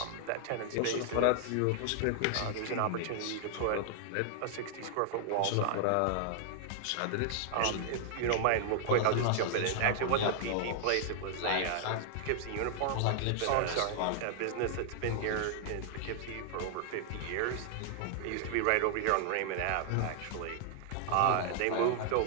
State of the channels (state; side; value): different; both; correlation -0.01